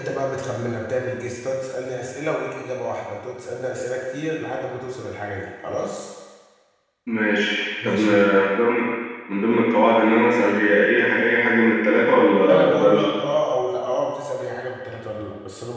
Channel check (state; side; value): identical; both; correlation 1.00